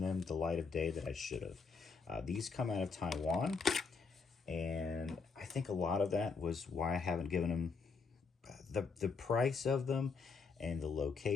them the light of day that I should have. These come out of Taiwan, and I think a lot of that was why I haven't given them the price of them and the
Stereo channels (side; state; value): right; quieter; 4.8 dB